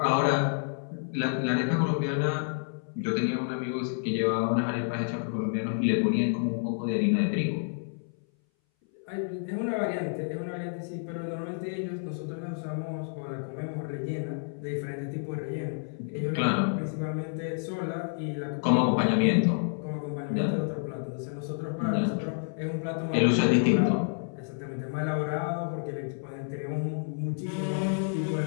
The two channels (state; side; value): silent; right; 58 dB below the other